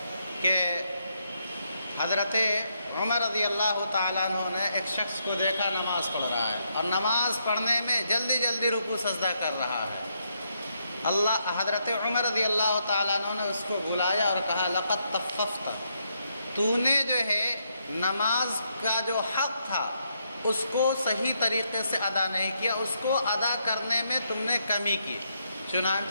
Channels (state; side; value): inverted; both; correlation -0.78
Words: کہ حضرت عمر رضی اللہ تعالیٰ عنہ نے ایک شخص کو دیکھا نماز پڑھ رہا ہے، اور نماز پڑھنے میں جلدی رکوع سجدہ کر رہا ہے۔ حضرت عمر رضی اللہ تعالیٰ عنہ نے اس کو بلایا اور کہا لقد تطففت، تو نے جو ہے نماز کا جو حق تھا اس کو صحیح طریقے سے ادا نہیں کیا، اس کو ادا کرنے میں تم نے کمی کی۔